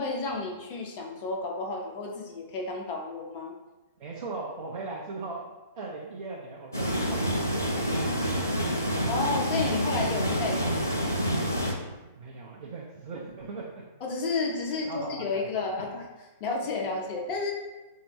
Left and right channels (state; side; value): inverted; both; correlation -0.47